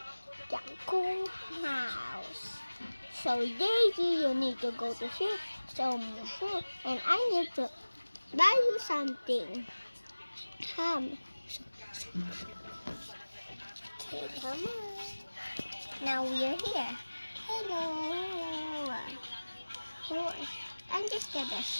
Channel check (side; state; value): both; inverted; correlation -1.00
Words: cool house. So Daisy, you need to go to sleep somewhere and I need to buy you something. Come. Okay, come on. Now we're here. Hello. Oh, I'm just gonna